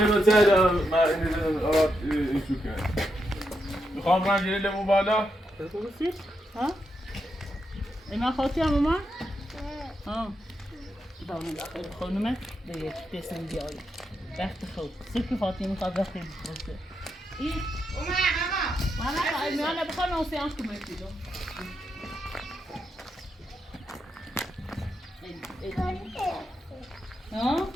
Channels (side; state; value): both; normal; correlation 0.83